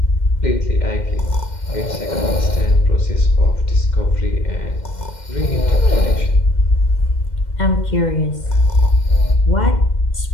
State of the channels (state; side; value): late; right; 2.1 ms